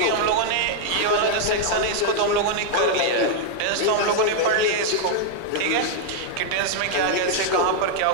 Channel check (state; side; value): different; both; correlation 0.00